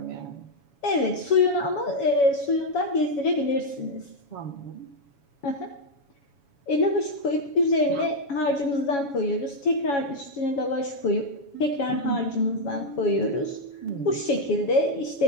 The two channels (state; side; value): late; right; 7.1 ms